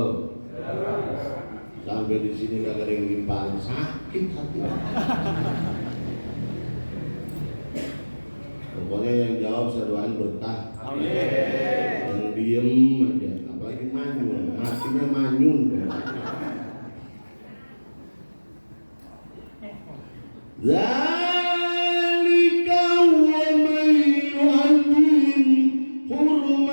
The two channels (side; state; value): both; inverted; correlation -1.00